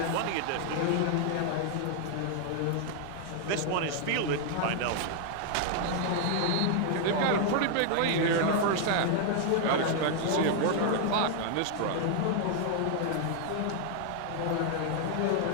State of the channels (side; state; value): both; different; correlation 0.00